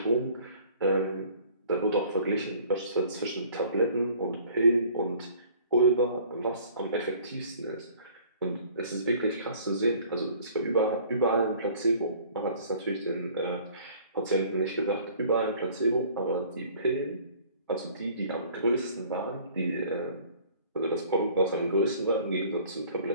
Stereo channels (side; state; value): both; inverted; correlation -0.52